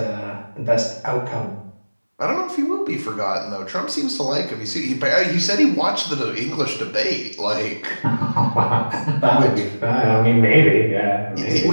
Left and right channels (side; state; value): both; inverted; correlation -1.00